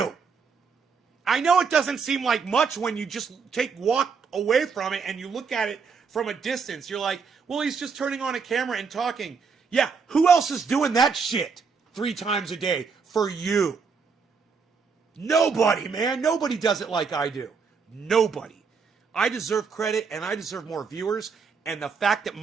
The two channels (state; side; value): quieter; left; 5.5 dB